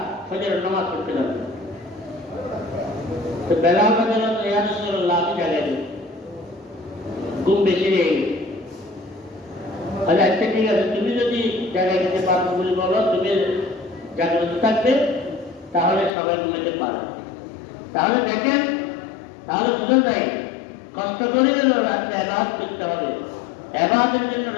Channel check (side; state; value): right; drops out; at 16.1 s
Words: ফজরের নামাজ পড়তে যাবে। তো বেলাল রাদিয়াল্লাহু আনহু, ইয়া রাসূলুল্লাহ, আমি জাগাই দিই, ঘুম বেশি হয়ে গেছে। আচ্ছা ঠিক আছে, তুমি যদি জাগাই দিতে পারো বলে বলো, তুমি জাগ্রত থাকবে, তাহলে সবাই ঘুমাইতে পারে। তাহলে দেখেন, তাহলে বুঝে যায় কষ্ট করে গেলেও রাত্রে ইবাদত করতে হবে, ইবাদতের জন্য